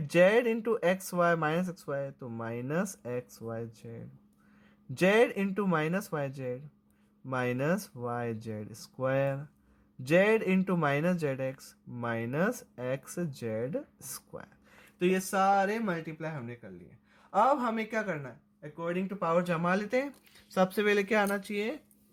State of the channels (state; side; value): identical; both; correlation 1.00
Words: Z into X Y minus x Y, तो minus x Y Z, Z into minus Y Z minus Y Z square, Z into minus Z X minus X Z square. तो ये सारे मल्टीप्लाई हमने कर लिए। अब हमें क्या करना है, अकॉर्डिंग टू पावर जमा लेते हैं। सबसे पहले क्या आना चाहिए,